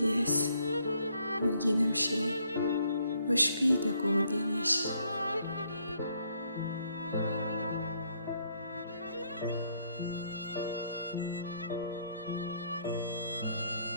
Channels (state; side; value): inverted; both; correlation -0.70